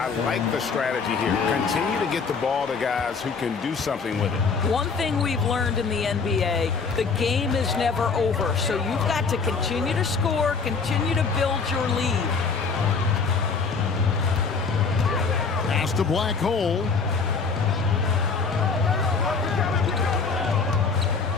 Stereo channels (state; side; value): quieter; right; 5.0 dB